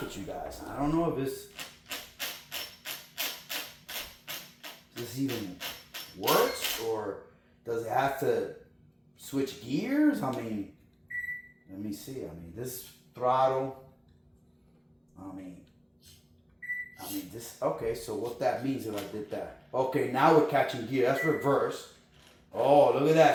with you guys. I don't know if this even works, or does it have to switch gears? I mean, let me see. I mean, this throttle. I mean this. Okay, so what that means if I did that? Okay, now we're catching gear. That's reverse. Oh, look at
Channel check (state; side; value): identical; both; correlation 1.00